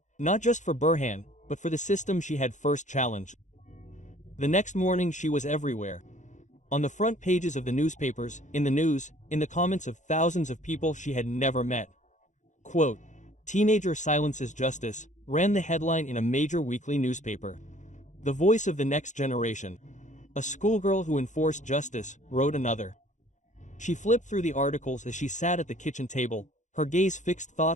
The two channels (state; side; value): late; right; 0.35 ms